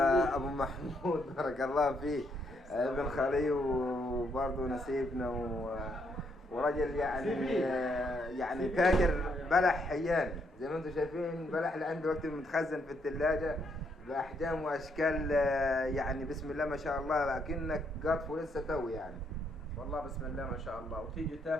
ابو محمود بارك الله فيه ابن خالي وبرضه نسيبنا ورجل يعني تاجر بلح حياني زي ما انتم شايفين. بلح اللي عنده وقت متخزن في الثلاجه باحجام واشكال يعني بسم الله ما شاء الله لكنك قاطفه لسه توي يعني. والله بسم الله ما شاء الله، وتيجي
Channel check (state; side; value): normal; both; correlation 0.74